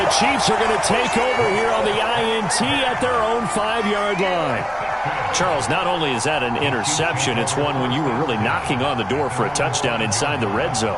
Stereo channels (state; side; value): identical; both; correlation 1.00